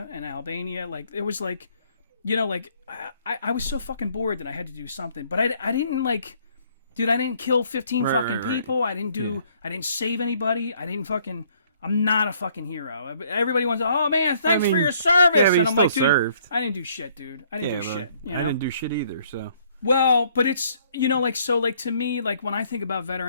and Albania. Like, it was like... You know, like, I was so fucking bored that I had to do something. But I didn't, like... Dude, I didn't kill 15 fucking people. I didn't save anybody. I'm not a fucking hero. Everybody wants to, oh, man, thanks for your service. Yeah, and I'm like, dude, served. I didn't do shit, dude. I didn't do shit. You know? I didn't do shit either, so... Well, but it's, you know, like, so, like, to me, like, when I think about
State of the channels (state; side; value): inverted; both; correlation -0.64